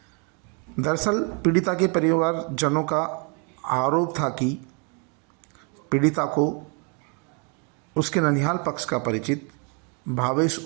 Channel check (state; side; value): quieter; left; 36.2 dB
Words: दरअसल पीड़िता के परिवारजनों का आरोप था कि पीड़िता को उसके ननिहाल पक्ष का परिचित भावेश